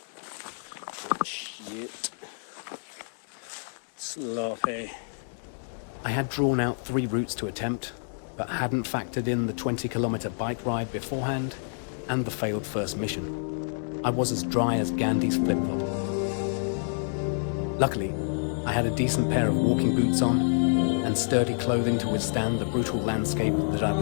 Oh, shit. Sloppy. I had drawn out 3 routes to attempt, but hadn't factored in the 20-kilometre bike ride beforehand and the failed first mission. I was as dry as Gandhi's flip-flop. Luckily, I had a decent pair of walking boots on and sturdy clothing to withstand the brutal landscape that I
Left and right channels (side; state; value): right; silent; digital silence